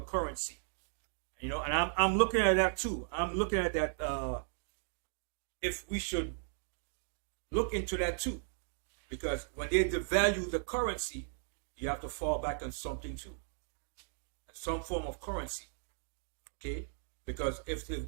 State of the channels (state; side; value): silent; left; digital silence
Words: You know, and I'm looking at that too. I'm looking at that if we should look into that too, because when they devalue the currency, you have to fall back on something too, and some form of currency. Okay, because if